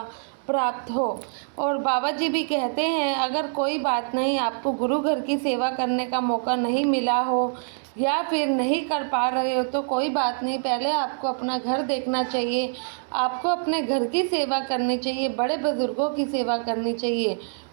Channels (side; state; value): left; silent; digital silence